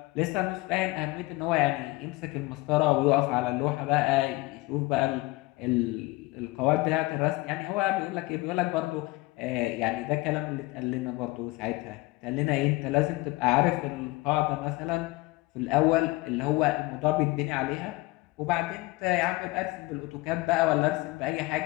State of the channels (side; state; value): right; quieter; 21.5 dB